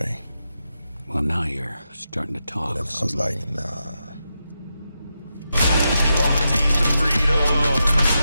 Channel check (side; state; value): both; inverted; correlation -0.87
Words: Well, now you're starting to talk. And I was like, nah. You want the taste of freedom.